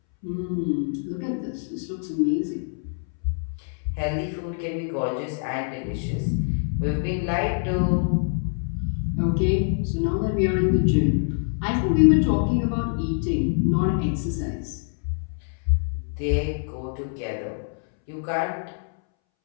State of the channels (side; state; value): right; silent; 62 dB below the other